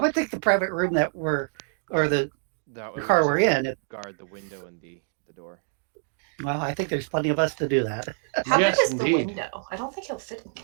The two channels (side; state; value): left; silent; digital silence